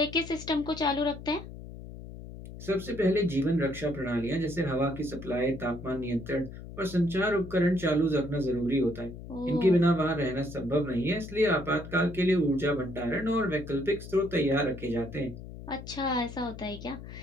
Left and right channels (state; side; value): noise; left; hum, 13 dB below the sound